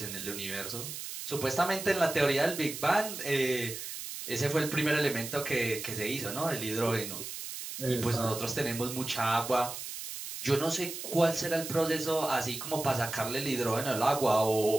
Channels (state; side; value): noise; right; hiss, 8 dB below the sound